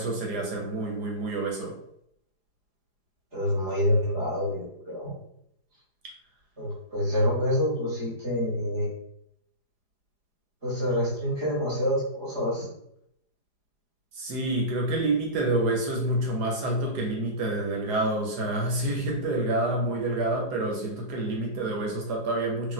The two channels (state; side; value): late; left; 4.9 ms